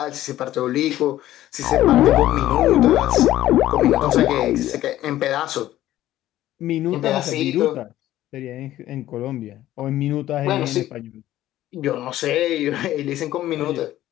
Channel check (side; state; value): right; quieter; 14.0 dB